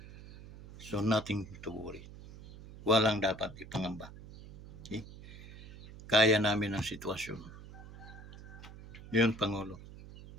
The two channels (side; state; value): right; noise; hum, 16 dB below the sound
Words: So, nothing to worry. Walang dapat ipangamba. Okay? Kaya namin ang sitwasyon. Yun, Pangulo.